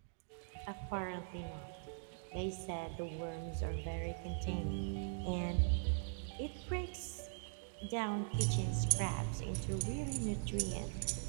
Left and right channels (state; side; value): silent; left; digital silence